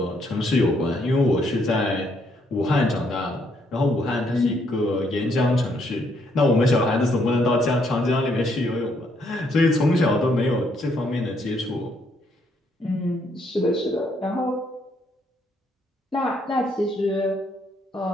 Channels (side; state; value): both; normal; correlation 0.72